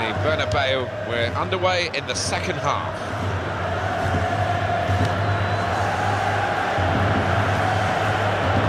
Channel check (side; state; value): both; identical; correlation 1.00